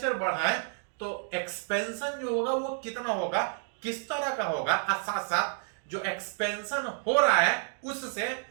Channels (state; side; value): silent; left; 58 dB below the other